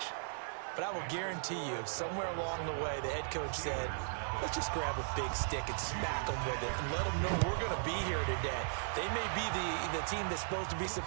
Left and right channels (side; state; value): left; silent; digital silence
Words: but I will guarantee you, somewhere along the way, the head coach said, let's just grab a big stick and smack them with it and let them know we're going to be here today. They may be the team that's supposed to be